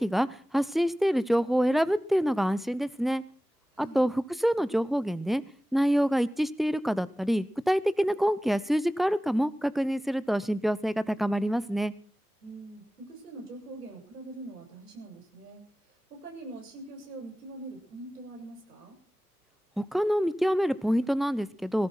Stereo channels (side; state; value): both; normal; correlation 0.97